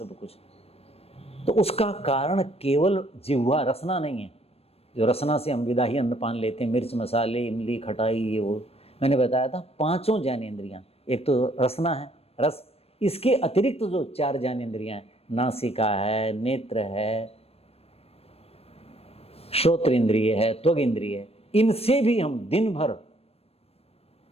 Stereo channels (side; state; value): right; late; 0.29 ms